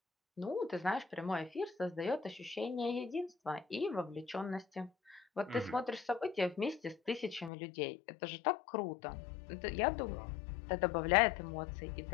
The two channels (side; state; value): right; drops out; at 7.5 s